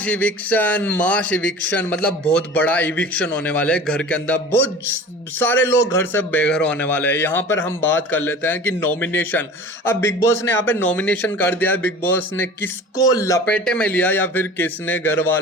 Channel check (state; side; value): normal; both; correlation 0.40